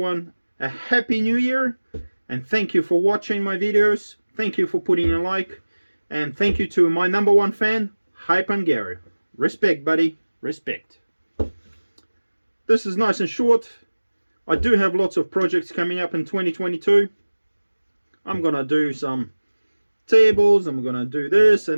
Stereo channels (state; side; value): inverted; both; correlation -1.00